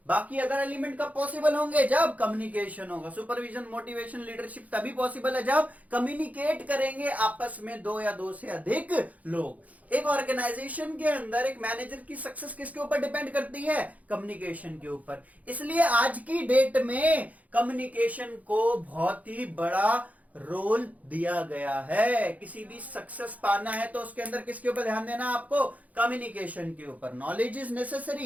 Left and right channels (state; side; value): late; left; 0.073 ms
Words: बाकी अदर एलिमेंट कब पॉसिबल होंगे, जब कम्युनिकेशन होगा। सुपरविजन, मोटिवेशन, लीडरशिप तभी पॉसिबल है जब कम्युनिकेट करेंगे आपस में 2 या 2 से अधिक लोग। एक ऑर्गेनाइजेशन के अंदर एक मैनेजर की सक्सेस किसके ऊपर डिपेंड करती है, कम्युनिकेशन के ऊपर। इसलिए आज की डेट में कम्युनिकेशन को बहुत ही बड़ा रोल दिया गया है। किसी भी सक्सेस पाना है तो उसके अंदर किसके ऊपर ध्यान देना, आपको कम्युनिकेशन के ऊपर। Knowledge is